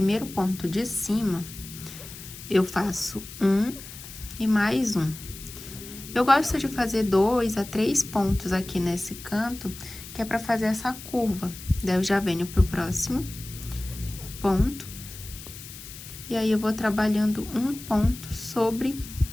ponto de cima, eu faço 1 e mais 1. Eu gosto de fazer 2 a 3 pontos aqui nesse canto, que é pra fazer essa curva. Daí, eu já venho pro próximo ponto. E aí, eu vou trabalhando um ponto sobre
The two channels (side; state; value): left; noise; hiss, 14 dB below the sound